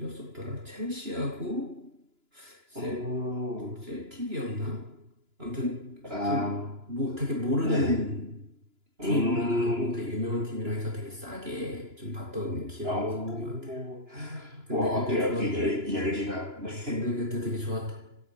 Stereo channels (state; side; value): late; left; 2.9 ms